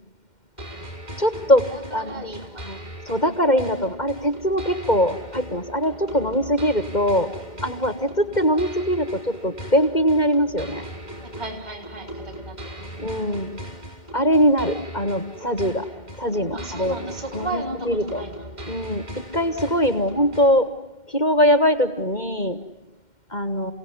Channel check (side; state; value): right; late; 2.1 ms